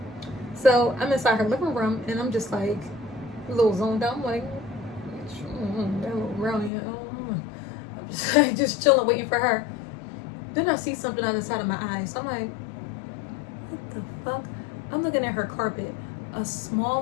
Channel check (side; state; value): right; drops out; at 6.7 s